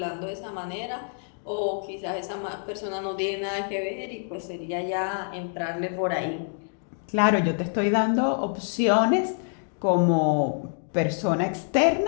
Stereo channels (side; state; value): right; silent; 60 dB below the other